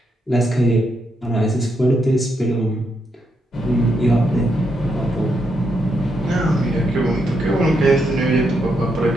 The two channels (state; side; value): normal; both; correlation 0.80